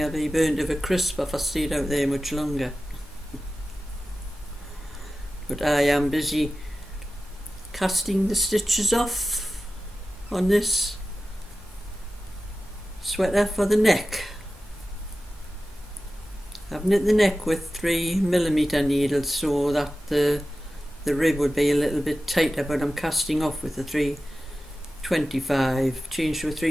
I'd be burned of a crisp if I stayed out there much longer. But I am busy casting the stitches off on this sweater for the neck. I've knit the neck with 3mm needles so that the rib would be a little bit tighter, but I'm casting off with the 325, changed to a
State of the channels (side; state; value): both; normal; correlation 0.95